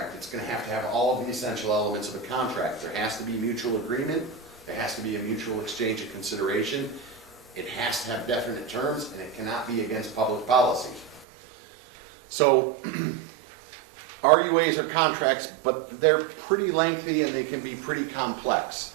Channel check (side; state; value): left; drops out; at 11.2 s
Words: It's going to have all of the essential elements of a contract. There has to be mutual agreement. There has to be a mutual exchange of consideration. It has to have definite terms, and it cannot be against public policy. So, RUAs are contracts, but they're pretty lengthy and they can be pretty complex.